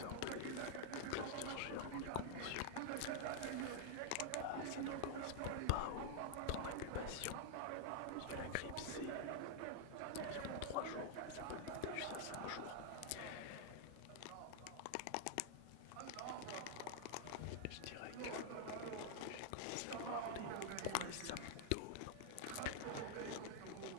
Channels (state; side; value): different; both; correlation -0.01